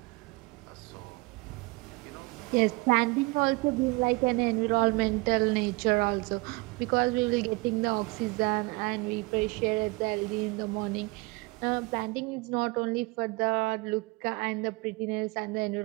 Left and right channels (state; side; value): quieter; left; 25.4 dB